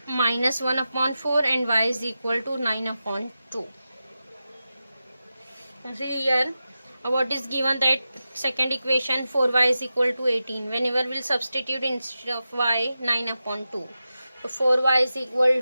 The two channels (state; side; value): inverted; both; correlation -0.92